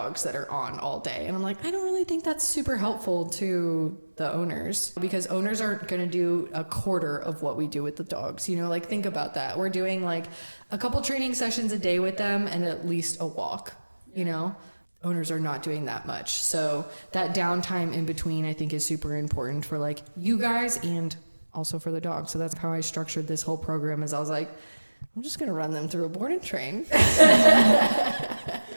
that are on all day. And I'm like, I don't really think that's super helpful to the owners, because owners aren't going to do a quarter of what we do with the dogs. You know, like think about that. We're doing like a couple training sessions a day with them and at least a walk, you know? Owners are not doing that much. So that downtime in between, I think, is super important for like you guys and also for the dogs. So that's how I structured this whole program, is I was like, I'm just going to run them through a board and train.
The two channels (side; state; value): both; inverted; correlation -1.00